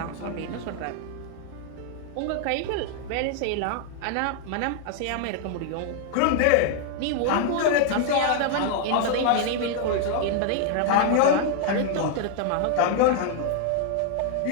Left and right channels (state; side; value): different; both; correlation 0.00